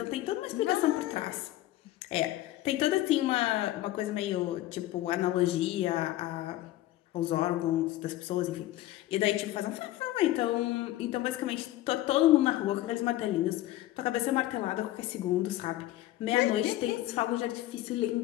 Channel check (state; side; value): quieter; right; 15.4 dB